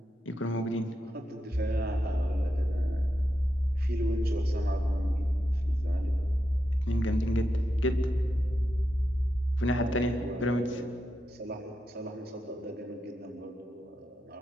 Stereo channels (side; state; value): both; normal; correlation 0.87